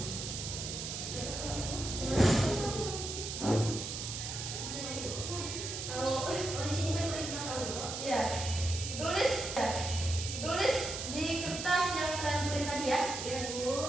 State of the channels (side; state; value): right; noise; hiss, 5 dB below the sound